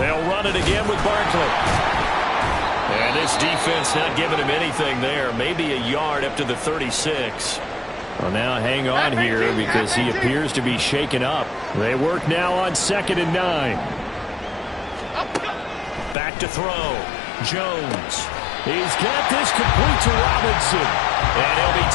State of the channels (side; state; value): right; drops out; at 16.2 s